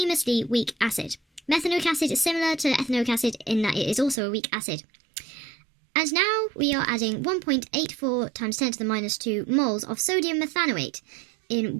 weak acid. Methanoic acid is similar to ethanoic acid in that it is also a weak acid. And now we are adding 1.84 times 10 to the minus 2 moles of sodium methanoate in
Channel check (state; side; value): drops out; left; at 4.2 s